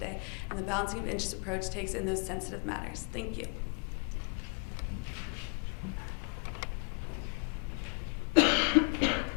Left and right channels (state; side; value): quieter; right; 39.9 dB